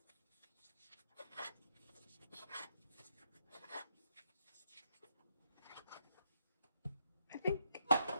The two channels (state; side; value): inverted; both; correlation -0.77